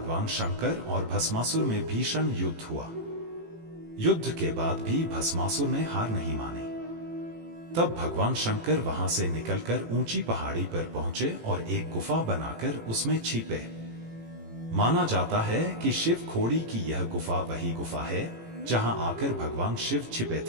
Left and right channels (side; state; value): left; late; 18 ms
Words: शंकर और भस्मासुर में भीषण युद्ध हुआ। युद्ध के बाद भी भस्मासुर ने हार नहीं मानी। तब भगवान शंकर वहां से निकलकर ऊंची पहाड़ी पर पहुंचे और एक गुफा बनाकर उसमें छिपे। माना जाता है कि शिव खोड़ी की यह गुफा वही गुफा है जहां आकर भगवान शिव छिपे